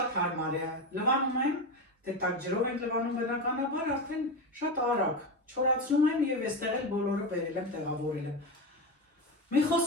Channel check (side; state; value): both; normal; correlation 0.18